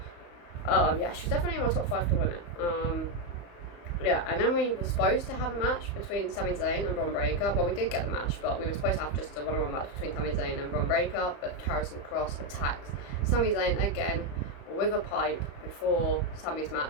yeah, she's definitely in my top 5 to win it. Yeah, and then we were supposed to have a match between Sami Zayn and Bron Breakker. Well, we did get the match, but we were supposed to have just a one-on-one match between Sami Zayn and Bron Breakker. But Karrion Kross attacks Sami Zayn again with a pipe before Sami's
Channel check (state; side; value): late; right; 35 ms